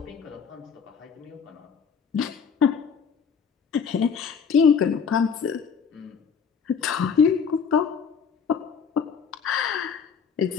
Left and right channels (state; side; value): quieter; right; 6.4 dB